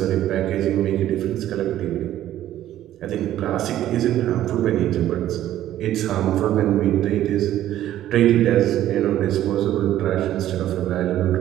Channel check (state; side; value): quieter; left; 12.8 dB